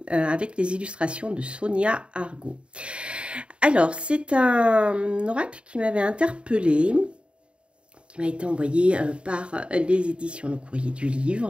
avec les illustrations de Sonia Argot. Alors, c'est un oracle qui m'avait interpellée, qui m'a été envoyé par les éditions Le Courrier du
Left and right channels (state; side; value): late; left; 0.056 ms